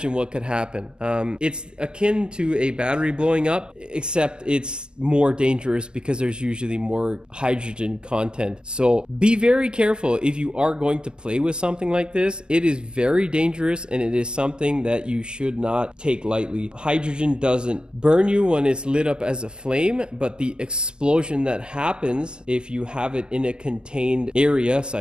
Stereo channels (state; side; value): late; left; 0.046 ms